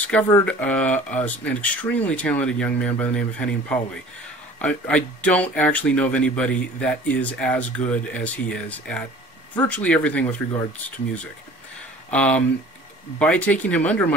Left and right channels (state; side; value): normal; both; correlation 0.47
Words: an extremely talented young man by the name of Henning Pauli. I don't actually know of anybody that is as good as he is at virtually everything with regards to music. By taking him under